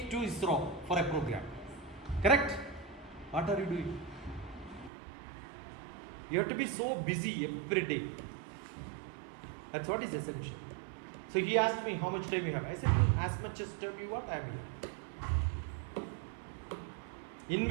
to ISRO for a program. Correct? What are you doing? You have to be so busy every day. That's what is essential. So he asked me how much time you have. I said, as much as time you want, I am here.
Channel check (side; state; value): left; drops out; at 4.9 s